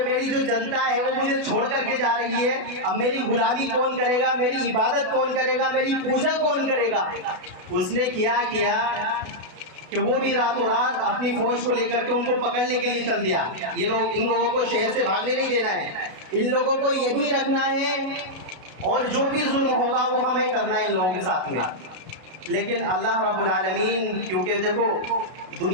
میری جو جنتا ہے وہ مجھے چھوڑ کر کے جا رہی ہے، اب میری غلامی کون کرے گا، میری عبادت کون کرے گا، میری پوجا کون کرے گا، اس نے کیا کہ وہ بھی راتوں رات اپنی فوج کو لے کر کے ان کو پکڑنے کے لیے چل دیا۔ یہ لوگ، ان لوگوں کو شہر سے بھاگنے نہیں دینا ہے، ان لوگوں کو یہی رکھنا ہے اور جو بھی ظلم ہوگا وہ ہمیں کرنا ہے ان لوگوں کے ساتھ میں۔ لیکن اللہ رب العالمین، کیونکہ دیکھو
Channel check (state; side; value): late; left; 32 ms